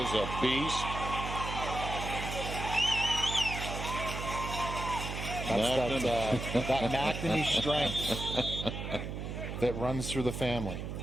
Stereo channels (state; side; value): noise; right; hum, 5 dB below the sound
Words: a beast. That's that McNamee strength that runs through the family.